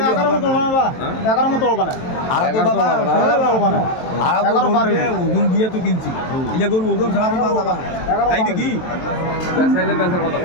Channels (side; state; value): right; late; 23 ms